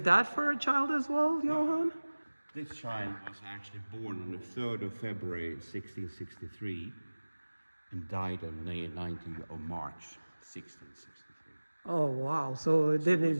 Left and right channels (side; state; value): both; inverted; correlation -1.00